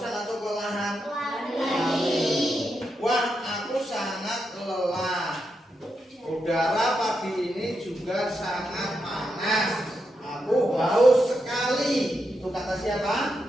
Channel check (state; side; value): normal; both; correlation 0.85